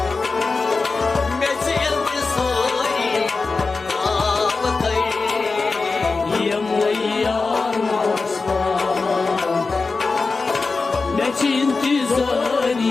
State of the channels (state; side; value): quieter; right; 4.1 dB